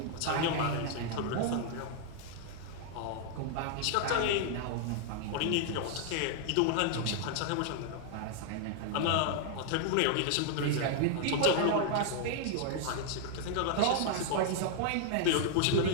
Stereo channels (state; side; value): different; both; correlation 0.00